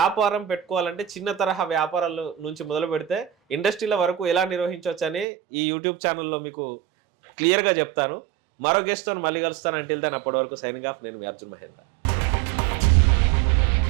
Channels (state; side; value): drops out; left; at 5.2 s